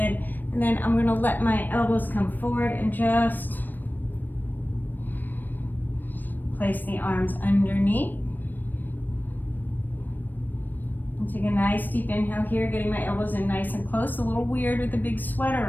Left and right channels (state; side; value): late; right; 0.090 ms